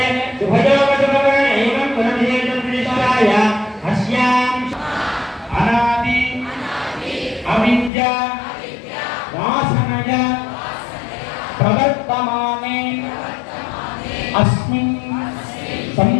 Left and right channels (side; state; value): right; drops out; at 7.9 s